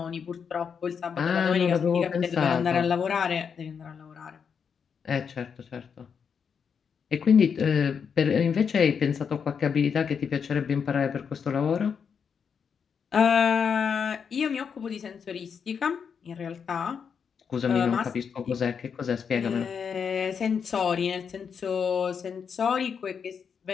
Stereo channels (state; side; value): quieter; right; 6.7 dB